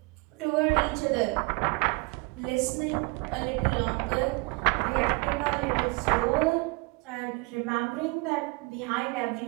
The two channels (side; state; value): left; quieter; 28.4 dB